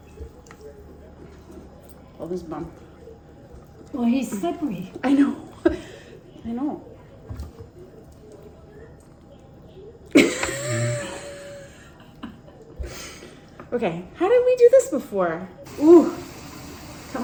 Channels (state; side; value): identical; both; correlation 1.00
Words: Pull this bum. Well, he's slippery. I know. I know. Okay, how did we do this before? Ooh, come